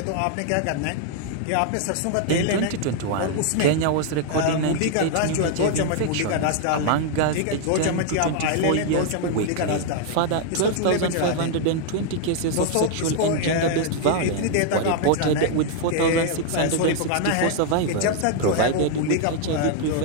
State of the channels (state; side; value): different; both; correlation 0.00